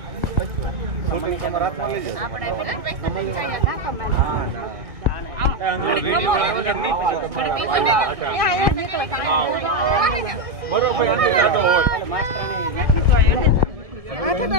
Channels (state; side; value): late; left; 1.8 ms